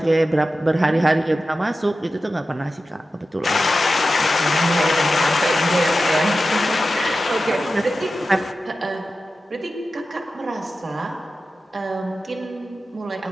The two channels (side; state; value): both; normal; correlation 0.93